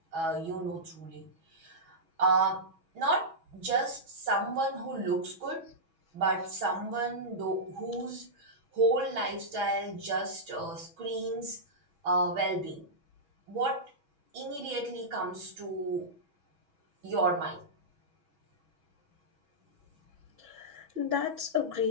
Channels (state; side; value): late; left; 6.1 ms